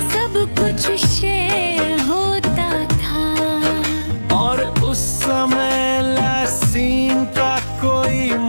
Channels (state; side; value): inverted; both; correlation -1.00